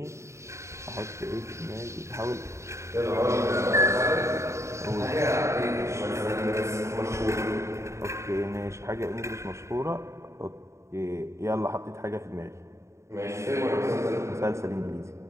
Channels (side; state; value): left; late; 0.14 ms